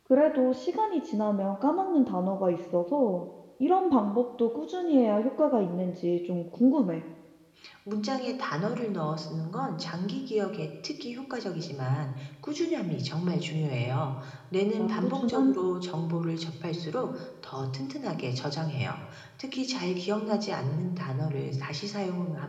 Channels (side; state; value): both; identical; correlation 1.00